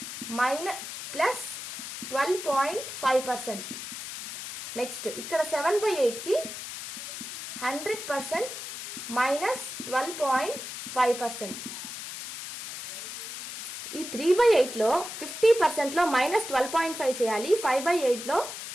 మైనస్ ప్లస్ 12.5%. నెక్స్ట్ ఇక్కడ 7/8 కి 100% మైనస్ 12.5%. ఈ 3/8 లో 50% లో మైనస్ 12.5 చేయాలి. 5/8 లో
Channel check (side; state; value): left; noise; hiss, 9 dB below the sound